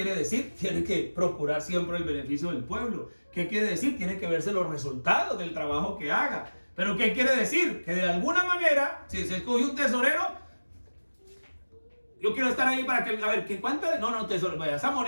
decir? Tiene que procurar siempre el beneficio del pueblo. ¿Qué quiere decir? Tiene que verse los resultados del trabajo que haga. ¿Pero qué quiere decir? Que de alguna manera, si se escoge un tesorero, yo quiero estar ahí para que, a ver, ¿qué cuánto? No, tesorero, esa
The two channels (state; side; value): inverted; both; correlation -1.00